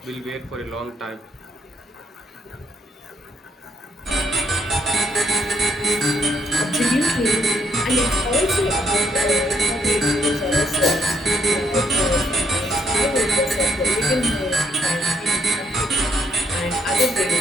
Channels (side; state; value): both; normal; correlation 0.71